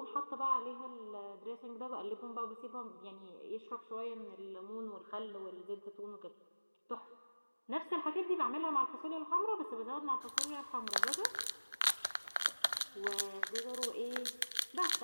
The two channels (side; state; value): both; inverted; correlation -1.00